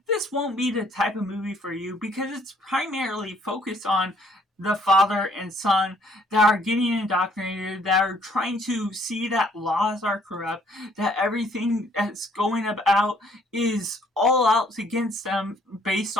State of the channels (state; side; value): normal; both; correlation 0.64